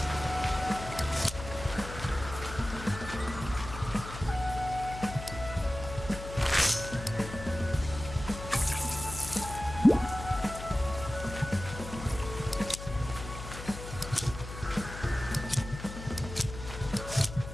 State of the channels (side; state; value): left; noise; hum, 10 dB below the sound